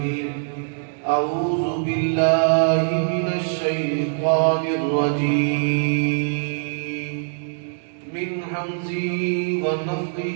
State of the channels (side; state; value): left; silent; digital silence